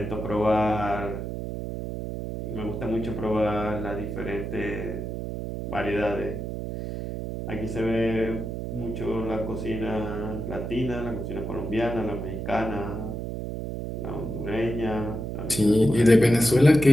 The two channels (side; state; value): right; noise; hum, 5 dB below the sound